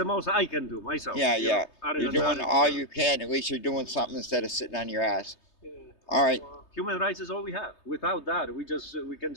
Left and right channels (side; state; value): right; late; 3.3 ms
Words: most I can do myself. Yeah. You're doing all you can. At least you're doing something instead of sitting on your ass. Yeah. All right. Human rights is all we have. Without that, we can